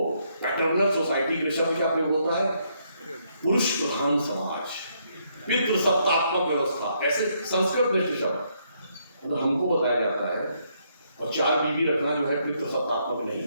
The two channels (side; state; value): both; inverted; correlation -0.73